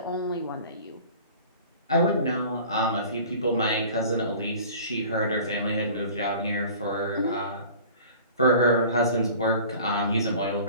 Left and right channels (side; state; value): both; inverted; correlation -0.44